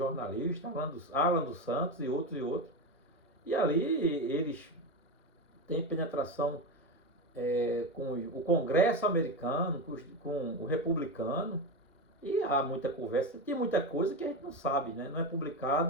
Alan dos Santos e outros. E ali eles têm penetração com o Congresso americano, com o republicano, e há muita conversa, tem muita coisa que a gente não sabe, né, não é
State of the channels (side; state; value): both; normal; correlation 0.17